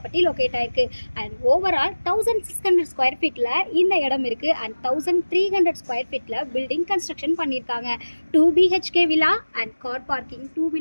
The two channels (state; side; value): inverted; both; correlation -1.00